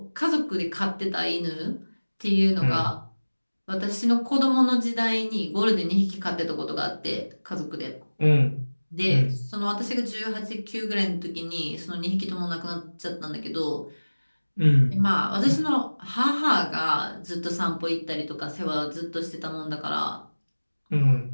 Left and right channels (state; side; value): inverted; both; correlation -1.00